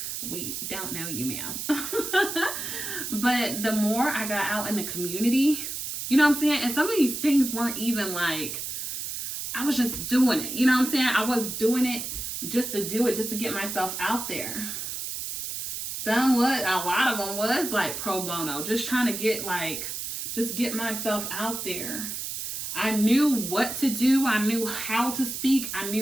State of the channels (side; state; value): right; noise; hiss, 5 dB below the sound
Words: We don't know you, ma'am. But the more I got out in the community, you know what I'm saying? And some of these things weren't even like, I was just doing it. You know what I'm saying? I was doing it just to do it, just to get myself out there. A lot of them was like pro bono, just trying to get just get myself out there. I knew what to do. I knew how to speak. I